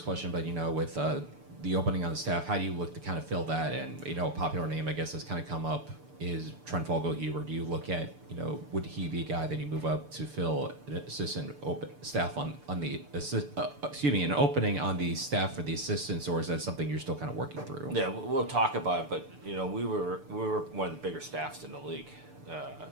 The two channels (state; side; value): late; left; 6.8 ms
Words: question, but, with the opening on the staff, how do you look to kind of fill that? And, a popular name, I guess, that's kind of come up is Trent Fogelhuber. Do you look at, would he be a guy that you move up to fill an assistant staff on the, an opening on the staff for the assistants, or is that something you're still kind of working through? Yeah, we'll talk about it, but, we were one of the bigger staffs in the league.